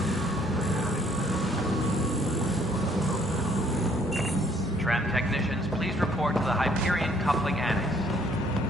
Tram technicians, please report to the Hyperion coupling annex.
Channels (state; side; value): normal; both; correlation 0.63